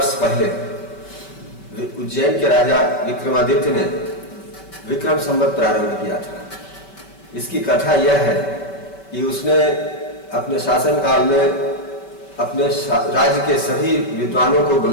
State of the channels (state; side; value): late; right; 5.2 ms